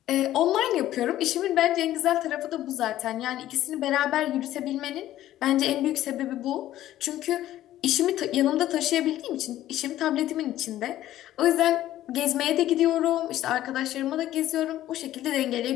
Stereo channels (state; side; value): quieter; right; 13.6 dB